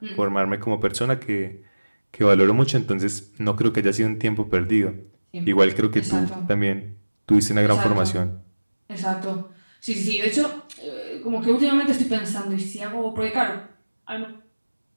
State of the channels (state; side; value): inverted; both; correlation -1.00